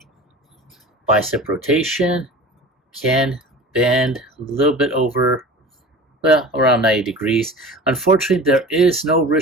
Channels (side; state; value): both; normal; correlation 0.36